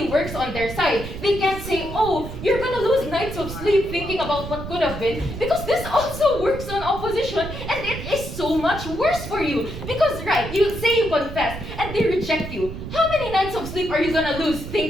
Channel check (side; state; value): right; noise; rumble, 9 dB below the sound